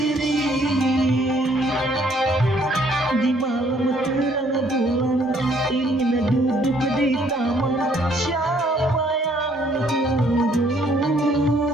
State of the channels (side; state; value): both; normal; correlation 0.64